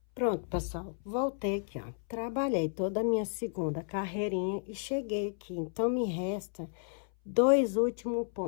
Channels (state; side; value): silent; right; 56 dB below the other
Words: Pronto, pessoal, voltei aqui, ó, trabalhei toda a minha segunda carreirinha e cheguei aqui, então me resta 2 últimos